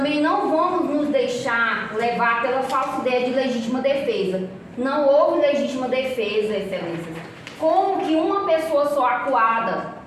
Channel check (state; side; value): identical; both; correlation 1.00